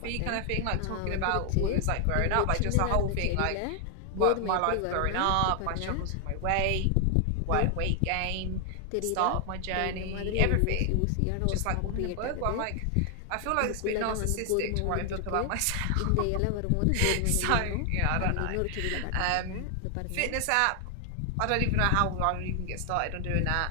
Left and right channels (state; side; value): different; both; correlation 0.00